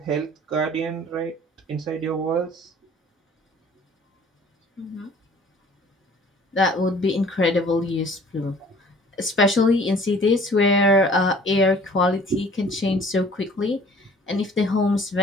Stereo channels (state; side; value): normal; both; correlation 0.52